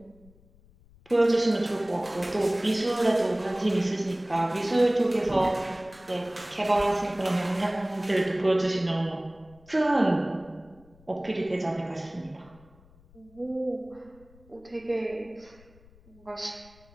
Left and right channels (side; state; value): left; noise; rumble, 27 dB below the sound